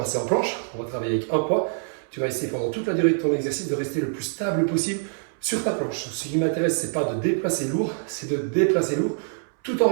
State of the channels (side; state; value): left; silent; 62 dB below the other